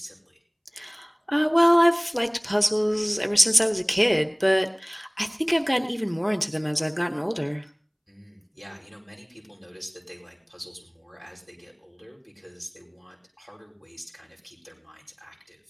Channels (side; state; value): both; identical; correlation 1.00